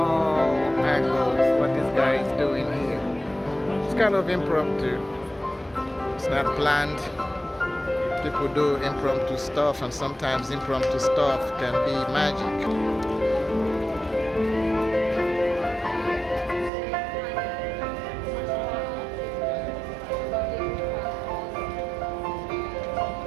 angles what this guy is doing here. It's kind of impromptu. It's not planned. People do impromptu stuff, and sometimes impromptu stuff can be magic.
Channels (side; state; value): left; drops out; at 16.7 s